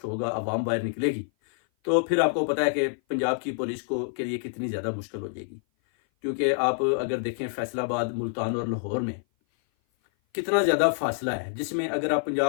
ہوگا، عوام باہر نکلے گی، تو پھر آپ کو پتا ہے کہ پنجاب کی پولیس کے لیے کتنی زیادہ مشکل ہو جائے گی، کیونکہ آپ اگر دیکھیں فیصل آباد، ملتان اور لاہور میں کتنا زیادہ فاصلہ ہے، جس میں اگر آپ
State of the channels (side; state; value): right; silent; 56 dB below the other